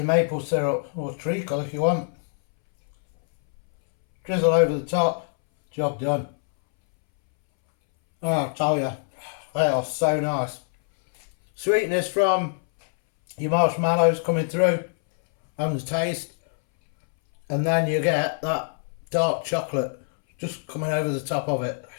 maple syrup or treacle if you want. Drizzle over the top, job done. Oh, I'll tell you, they are so nice. Sweetness from your marshmallows coming through and the taste, and then you get that dark chocolate just coming over the top of it.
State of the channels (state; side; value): silent; right; 62 dB below the other